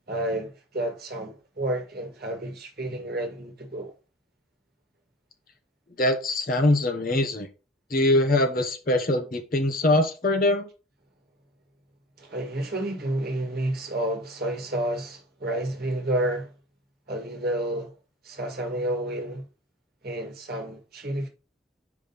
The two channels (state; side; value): normal; both; correlation 0.34